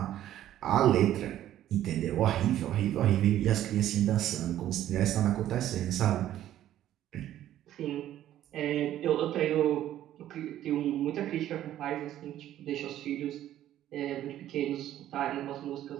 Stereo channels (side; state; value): left; quieter; 12.5 dB